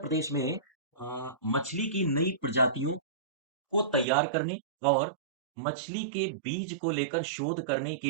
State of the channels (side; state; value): left; drops out; at 4.0 s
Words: में मछली की नई प्रजातियों को तैयार करने और मछली के बीज को लेकर शोध करने